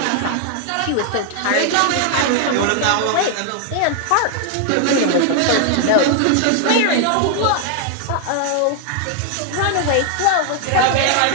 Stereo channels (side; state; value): both; different; correlation 0.00